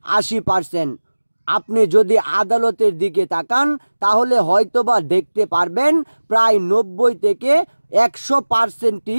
৮০%। আপনি যদি আদালতের দিকে তাকান তাহলে হয়তোবা দেখতে পারবেন প্রায় ৯০ থেকে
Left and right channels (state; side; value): inverted; both; correlation -1.00